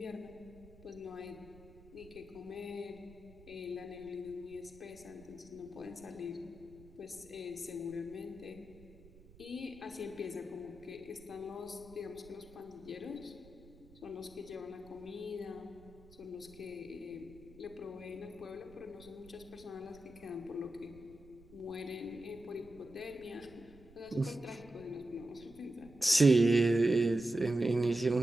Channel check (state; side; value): noise; right; rumble, 22 dB below the sound